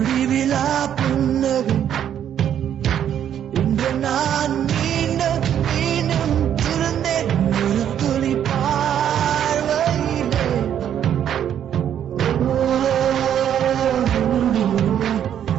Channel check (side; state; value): left; quieter; 9.7 dB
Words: புன்னகை இன்று நான் மீண்டும் மீண்டும் திருந்தேன் ஒரு துளி பார்வையிலே